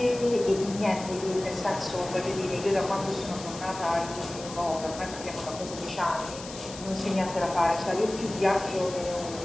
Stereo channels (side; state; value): left; noise; hiss, 13 dB below the sound